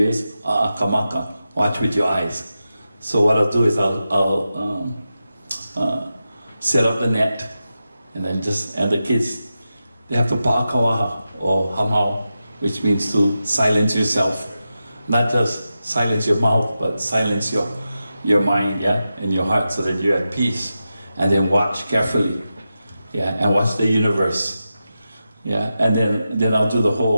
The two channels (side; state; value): both; inverted; correlation -0.91